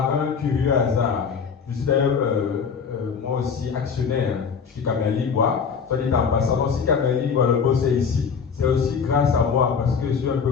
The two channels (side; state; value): right; quieter; 6.2 dB